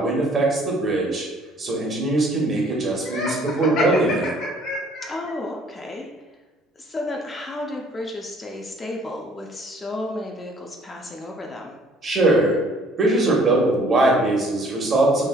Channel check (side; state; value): both; normal; correlation 0.58